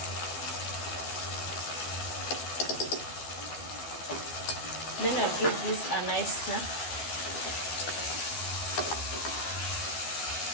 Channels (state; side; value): late; right; 12 ms